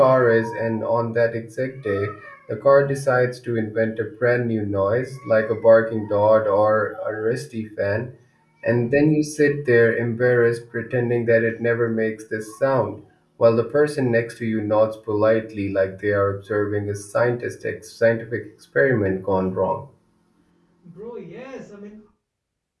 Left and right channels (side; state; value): both; identical; correlation 1.00